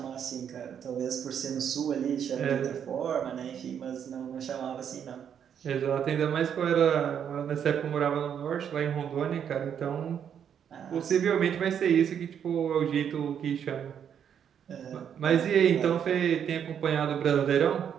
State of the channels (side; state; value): left; quieter; 8.4 dB